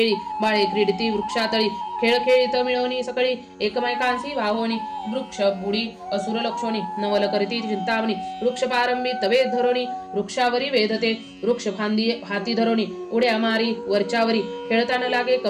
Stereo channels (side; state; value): both; identical; correlation 1.00